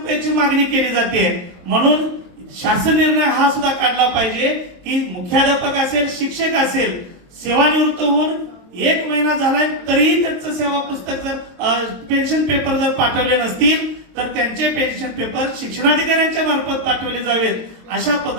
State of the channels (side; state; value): left; late; 23 ms